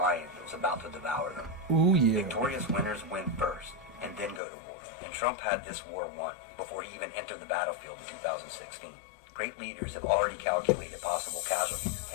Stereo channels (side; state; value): right; drops out; at 4.4 s